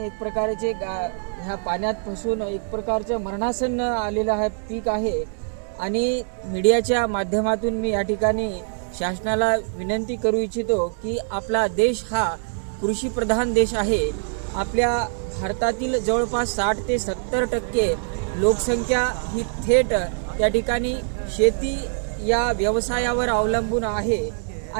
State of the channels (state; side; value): silent; left; digital silence